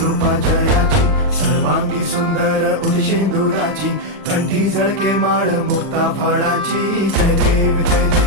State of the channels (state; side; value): late; left; 40 ms